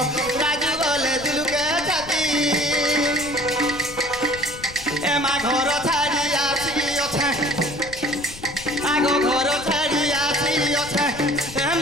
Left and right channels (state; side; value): noise; left; rumble, 16 dB below the sound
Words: রাজু বলে দুলুকে ছাতি এ মা ঘর ছাড়ি আসি ওঠে আগো ঘর ছাড়ি আসি ওঠে এ